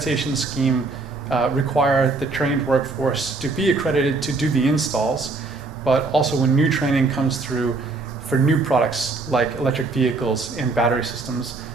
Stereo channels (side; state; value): left; quieter; 3.7 dB